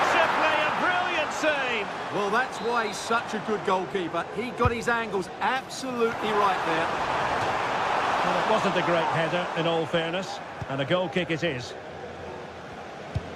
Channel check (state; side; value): identical; both; correlation 1.00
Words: simply, a brilliant save. Well, that's why he's such a good goalkeeper. He got his angles absolutely right there. Well, it wasn't a great header, in all fairness. And a goal kick it is.